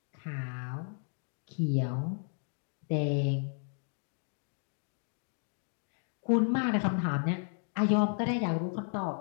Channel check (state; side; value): silent; right; 55 dB below the other